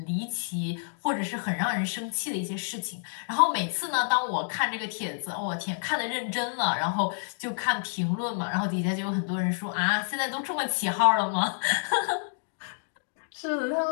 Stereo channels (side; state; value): right; silent; digital silence